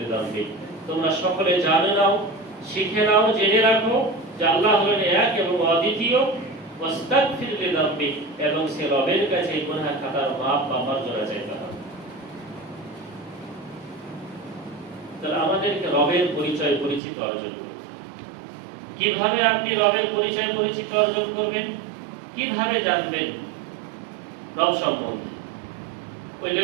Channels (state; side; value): drops out; left; at 17.0 s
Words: তোমরা সকলে জানে নাও, শিখে নাও, জেনে রাখো যে আল্লাহ হলেন এক এবং অদ্বিতীয়, ওয়াস্তাগফির লিযামবিক, এবং সে রবের কাছে গুনাহ খাতার মাপ বা মার্জনা চাইতে হবে। তাহলে আমাদেরকে রবের পরিচয় পরিচিত অর্জন করতে, কিভাবে আপনি রবের পরিচয় পরিচিত অর্জন করবেন? কিভাবে জানবেন রব সম্বন্ধে? ওই